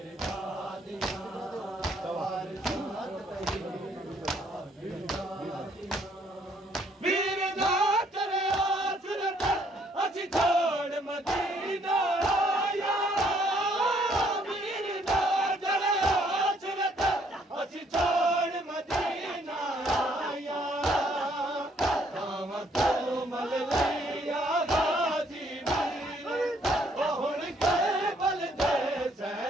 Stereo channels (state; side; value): normal; both; correlation 0.66